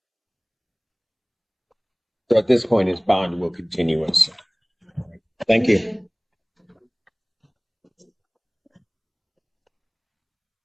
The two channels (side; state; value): both; identical; correlation 1.00